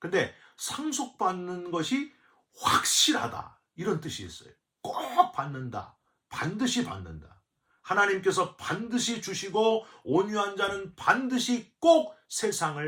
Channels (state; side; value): identical; both; correlation 1.00